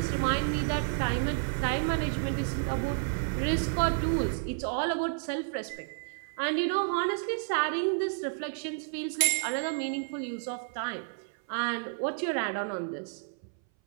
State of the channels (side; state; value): left; silent; 57 dB below the other